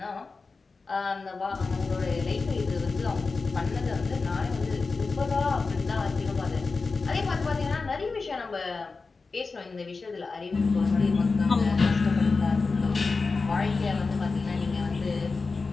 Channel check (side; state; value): right; quieter; 4.2 dB